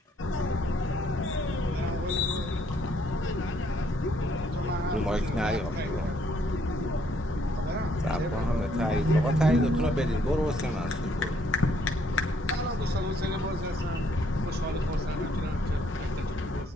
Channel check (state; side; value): normal; both; correlation 0.68